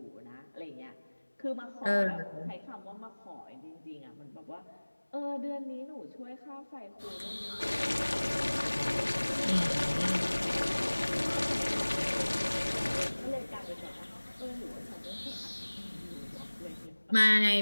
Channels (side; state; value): both; inverted; correlation -1.00